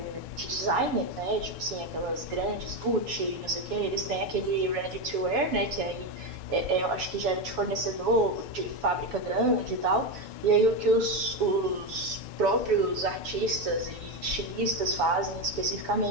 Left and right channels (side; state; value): left; late; 7.1 ms